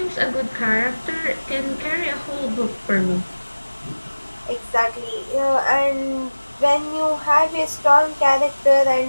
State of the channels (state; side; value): inverted; both; correlation -1.00